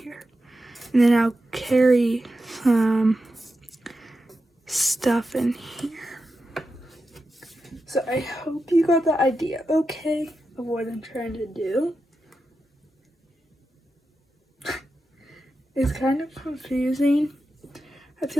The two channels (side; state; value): both; normal; correlation 0.90